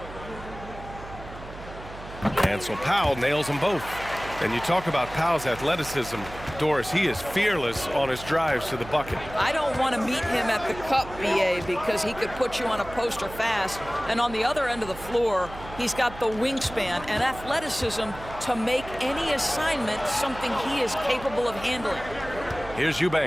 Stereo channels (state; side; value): noise; right; hum, 14 dB below the sound